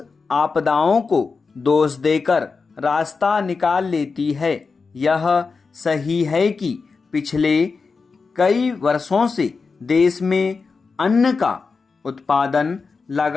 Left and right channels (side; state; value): right; quieter; 4.7 dB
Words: आपदाओं को दोष देकर रास्ता निकाल लेती है। यह सही है कि पिछले कई वर्षों से देश में अन्न का उत्पादन